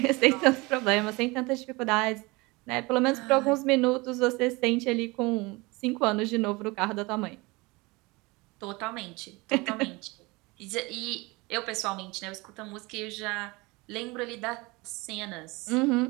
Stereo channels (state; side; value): quieter; left; 24.3 dB